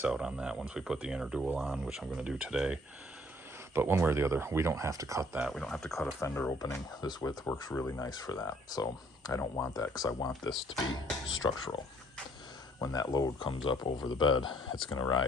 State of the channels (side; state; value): both; normal; correlation 0.61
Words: out on that once we put the inner dual on, which I'm going to do today. But one way or the other, we don't have to cut that. We don't have to cut a fender opening. This width works really nice for that. So I don't want that because I want this to be structural. When that load comes up over the bed, it's going to